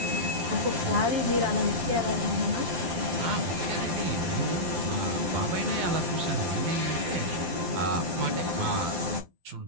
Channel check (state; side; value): late; left; 12 ms